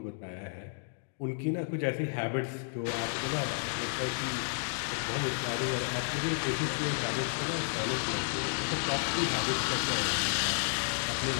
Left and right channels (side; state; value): right; silent; digital silence